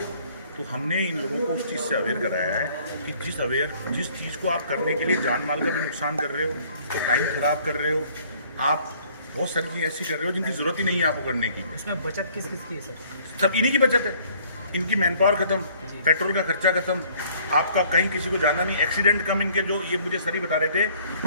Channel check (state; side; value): inverted; both; correlation -0.58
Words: तो हमने इन लोगों को उस चीज़ से अवेयर कराया है कि जिस चीज़ को आप करने के लिए जान माल का भी नुकसान कर रहे हो, तो टाइम खराब कर रहे हो, आप बहुत सारी चीज़ें ऐसी कर रहे हो जिनकी ज़रूरत ही नहीं है आपको करने की। इसमें बचत किस किस की है सर? सब इन्हीं की बचत है, इनकी मैन पावर खत्म, पेट्रोल का खर्चा खत्म, आपका कहीं किसी को जाना नहीं, एक्सीडेंट कम। इनके जो ये मुझे सर ही बता रहे थे